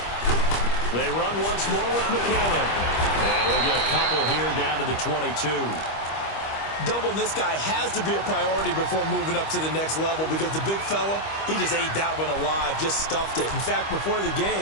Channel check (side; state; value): right; late; 25 ms